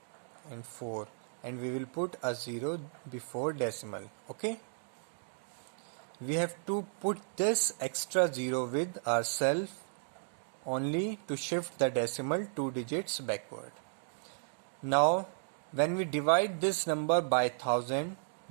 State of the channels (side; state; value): left; silent; digital silence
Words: and 4, and we will put a 0 before decimal. Okay, we have to put this extra 0 with ourselves only to shift the decimal 2 digits backward. Now when we divide this number by 1000,